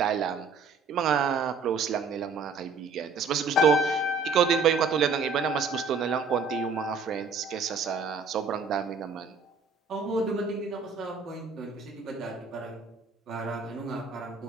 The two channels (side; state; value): left; quieter; 4.5 dB